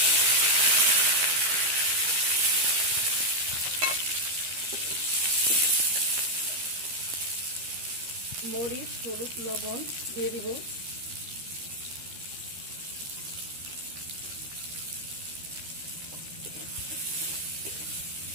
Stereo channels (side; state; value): left; late; 13 ms